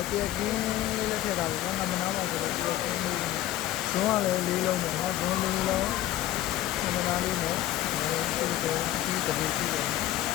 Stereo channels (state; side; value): quieter; right; 14.0 dB